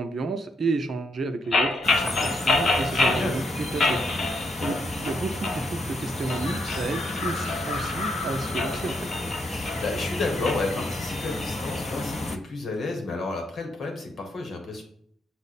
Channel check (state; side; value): normal; both; correlation 0.77